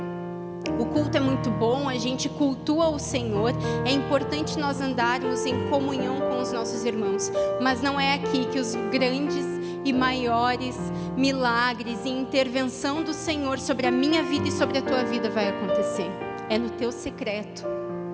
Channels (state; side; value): identical; both; correlation 1.00